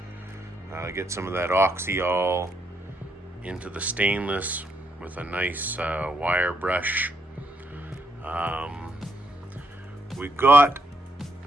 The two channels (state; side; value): normal; both; correlation 0.76